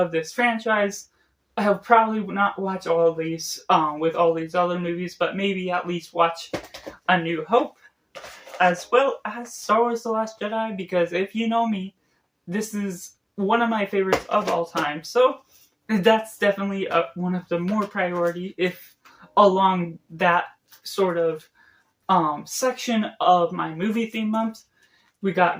this franchise. I'll probably not watch all of these with all these other movies, but maybe at least watch A New Hope, as well as Star Wars The Last Jedi, because if you know me, this is one of my favorites of all time. So that's definitely one of the more priority, if along that sort of section of my movie theme months. We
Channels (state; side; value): identical; both; correlation 1.00